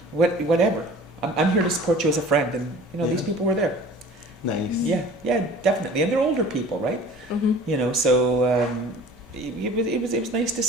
whatever. I'm here to support you as a friend, and these people were there. Nice. Yeah, definitely, and they're older people, right? Mm-hmm. So it was nice to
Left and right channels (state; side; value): normal; both; correlation 0.45